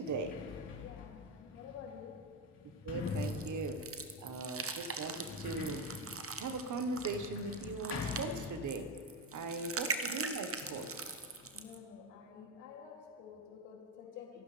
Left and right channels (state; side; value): normal; both; correlation 0.11